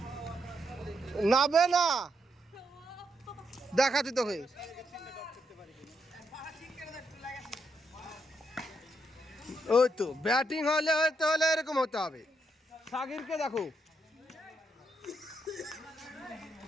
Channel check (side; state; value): both; normal; correlation 0.79